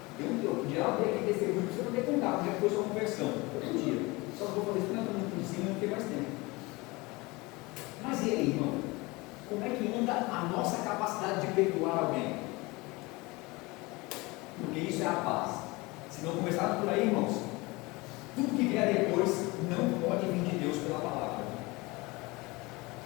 Eu podia abrir aqui testemunho para você poder contar, como é que foi sua conversão. Todo dia. Só vou fazer isso porque eu por cima, não tem mais tempo. Mas e aí, irmão? Como é que anda a nossa capacidade de perdoar alguém? Porque isso é a paz. Se não começar por aí, irmãos, tudo que vier depois não pode vir de Deus pela palavra.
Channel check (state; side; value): quieter; right; 23.8 dB